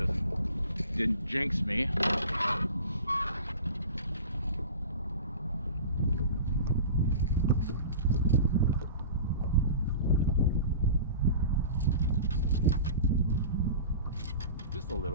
didn't jinx me. Just a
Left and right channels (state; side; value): inverted; both; correlation -0.37